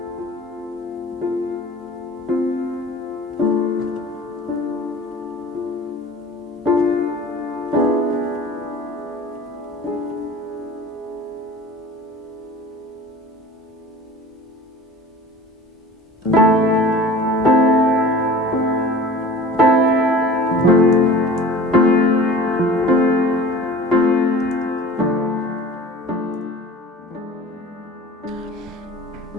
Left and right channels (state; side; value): normal; both; correlation 0.41